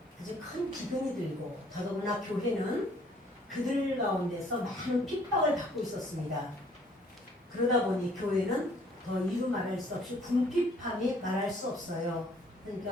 아주 큰 기근이 들고 더더구나 교회는 그들 가운데서 많은 핍박을 받고 있었습니다. 그러다 보니 교회는 더 이루 말할 수 없이 궁핍함이 말할 수 없어요.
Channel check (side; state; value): both; normal; correlation 0.60